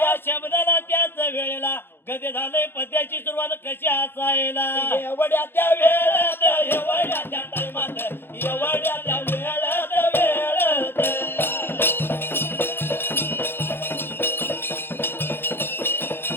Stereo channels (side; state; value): right; late; 0.10 ms